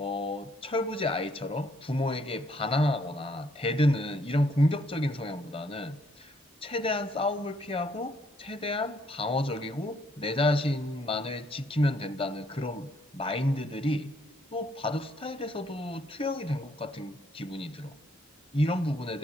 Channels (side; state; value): both; normal; correlation 0.68